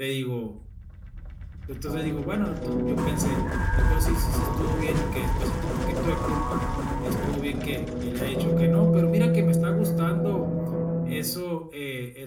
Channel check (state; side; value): identical; both; correlation 1.00